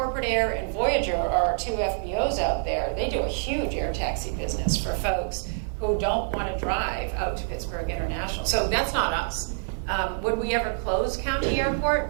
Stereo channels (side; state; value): left; silent; 61 dB below the other